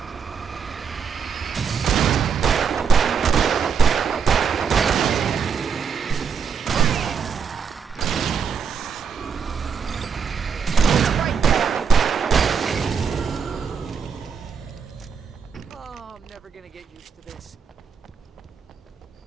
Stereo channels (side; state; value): left; quieter; 6.6 dB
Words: Oh, I'm never gonna get used to this.